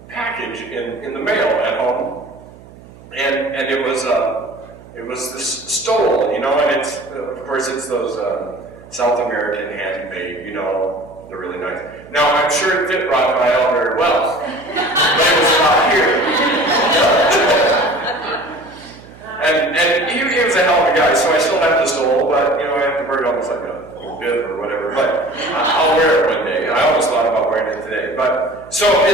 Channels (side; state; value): right; noise; hum, 21 dB below the sound